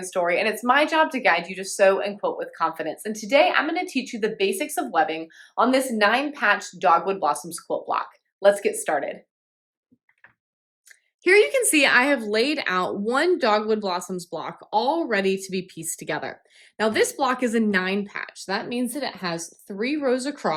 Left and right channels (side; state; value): both; identical; correlation 1.00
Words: Story, and it's my job to guide you to sew and quilt with confidence. And today I'm going to teach you the basics of webbing on this 9-patch Dogwood Blossoms quilt block. Let's get started. Here you can see I have laid out one Dogwood Blossoms block all ready to be pieced together. Now this block is a 9-patch. That means that it has 3 rows